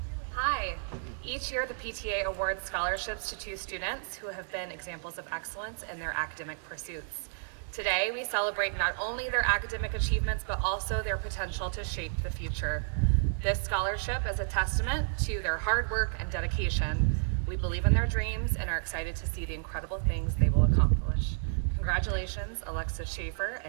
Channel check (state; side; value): silent; left; digital silence